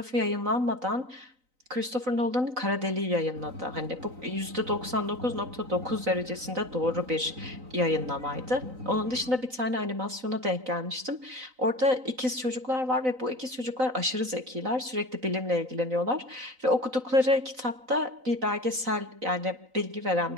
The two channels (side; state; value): left; late; 3.9 ms